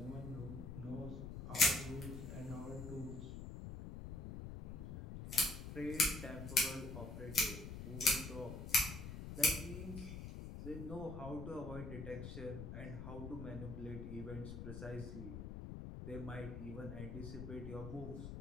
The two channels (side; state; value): left; noise; rumble, 8 dB below the sound